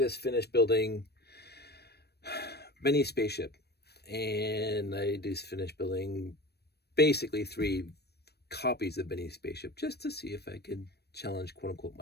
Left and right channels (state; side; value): late; right; 0.47 ms